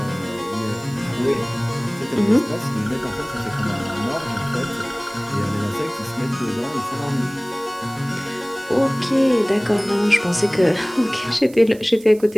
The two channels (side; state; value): right; noise; hiss, 22 dB below the sound